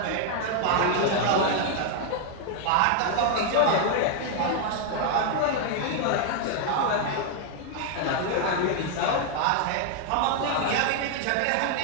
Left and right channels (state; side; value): different; both; correlation 0.00